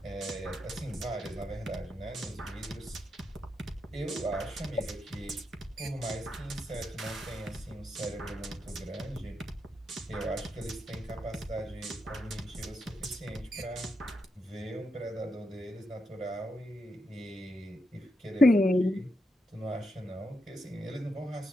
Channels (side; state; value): both; normal; correlation 0.83